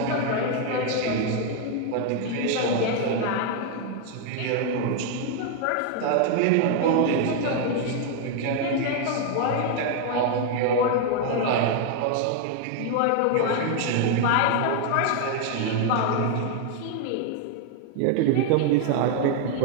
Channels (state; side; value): different; both; correlation 0.00